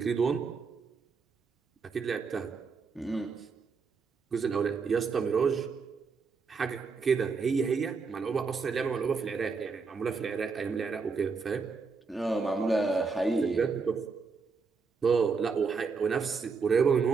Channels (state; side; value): quieter; left; 5.0 dB